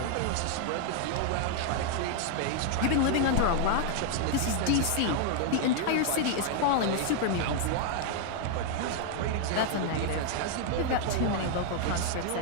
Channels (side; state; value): both; different; correlation 0.00